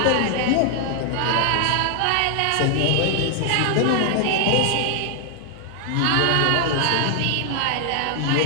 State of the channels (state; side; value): different; both; correlation 0.00